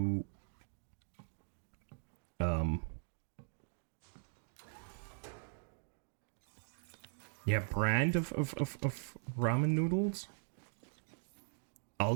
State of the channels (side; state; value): left; silent; digital silence